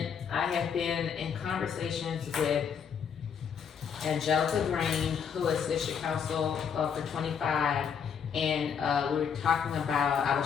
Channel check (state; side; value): quieter; right; 7.2 dB